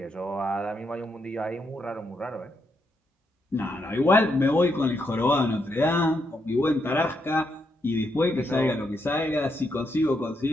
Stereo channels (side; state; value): both; normal; correlation 0.79